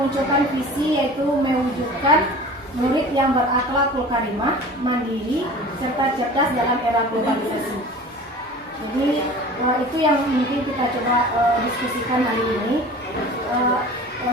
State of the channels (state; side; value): normal; both; correlation 0.40